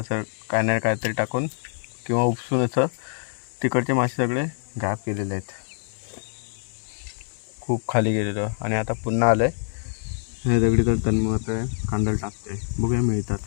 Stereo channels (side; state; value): right; silent; digital silence